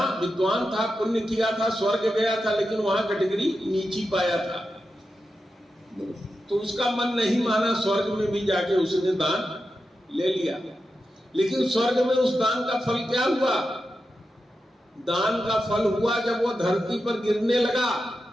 विद्वान था, पुण्य किया था, स्वर्ग गया था, लेकिन वहां कैटेगरी नीची पाया था। तो उसका मन नहीं माना, स्वर्ग में भी जाके उसने दान ले लिया। लेकिन स्वर्ग में उस दान का फल क्या हुआ? दान का फल हुआ जब वो धरती पर गिरने लगा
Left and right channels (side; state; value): both; normal; correlation 0.90